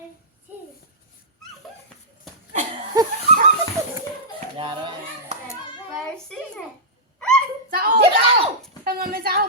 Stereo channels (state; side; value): normal; both; correlation -0.15